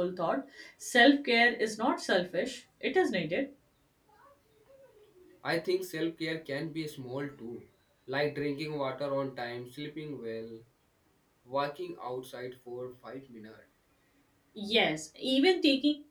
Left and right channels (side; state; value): both; identical; correlation 1.00